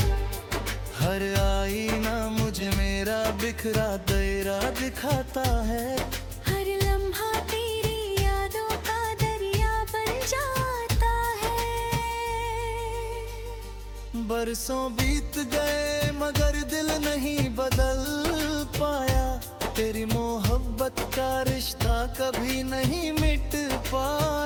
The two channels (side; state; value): both; identical; correlation 1.00